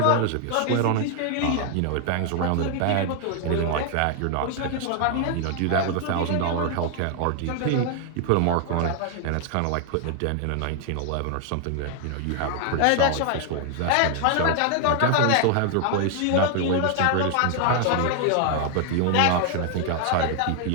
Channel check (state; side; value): different; both; correlation 0.00